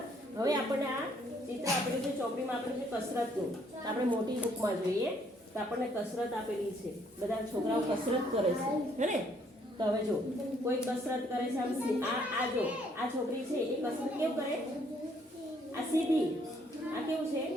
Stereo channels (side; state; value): both; normal; correlation 0.66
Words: હવે આપણને આ ચિત્ર આપેલું છે ચોપડીમાં, આપેલું છે કસરતનું. તો આપણે મોટી બુકમાં જોઈએ તો આપણને કસરત આપેલી છે. બધા છોકરાઓ કસરત કરે છે, હે ને. તો હવે જો કોઈ કસરત કરે છે, આ જો આ છોકરી છે એ કસરત કેવું કરે, આ સીધી, આ કેવું છે,